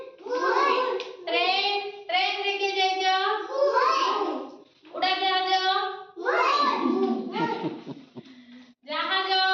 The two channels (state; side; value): identical; both; correlation 1.00